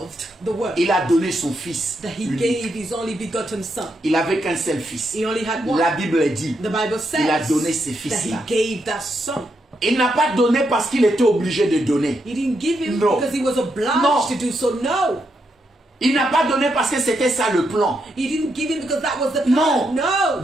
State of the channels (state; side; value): normal; both; correlation 0.81